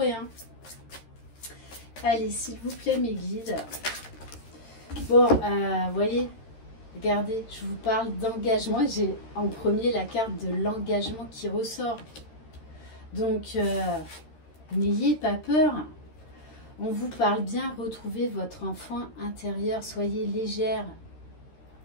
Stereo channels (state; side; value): late; right; 13 ms